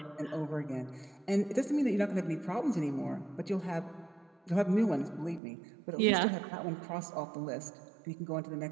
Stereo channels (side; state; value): left; drops out; at 5.4 s